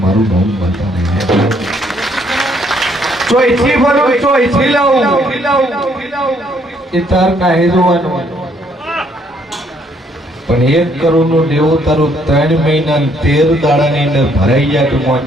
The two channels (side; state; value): both; normal; correlation 0.68